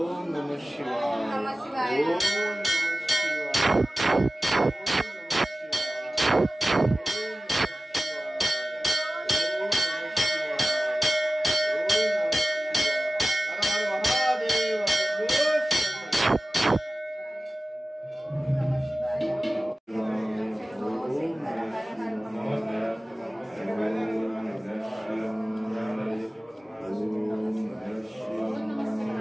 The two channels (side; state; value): both; normal; correlation 0.96